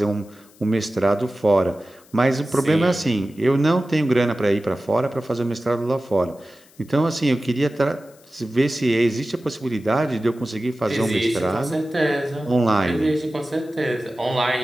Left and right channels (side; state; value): left; noise; hiss, 28 dB below the sound